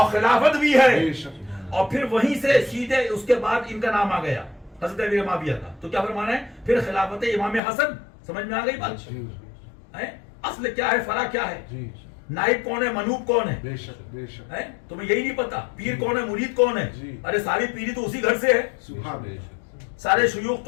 خلافت بھی ہے، بے شک اور پھر وہیں سے سیدھے اس کے بعد ان کا نام آ گیا حضرت امیر معاویہ کا. تو کیا فرمانا ہے؟ پھر خلافت امام حسن. سمجھ میں آ گئی بات؟ جی اصل کیا ہے، فرع کیا ہے، جی نائب کون ہے، منوب کون ہے؟ بے شک بے شک تمہیں یہی نہیں پتا پیر کون ہے، مرید کون ہے؟ جی. ارے ساری پیری تو اسی گھر سے ہے، سبحان اللہ سارے شیوخ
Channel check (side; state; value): right; drops out; at 7.6 s